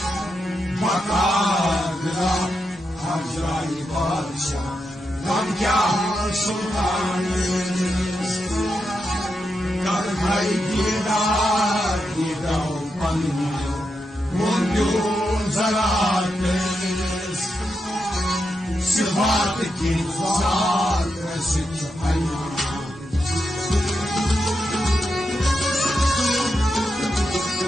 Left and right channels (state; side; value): normal; both; correlation 0.86